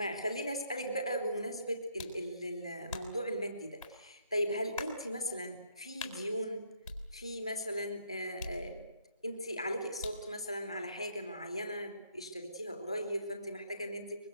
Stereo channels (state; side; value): inverted; both; correlation -0.70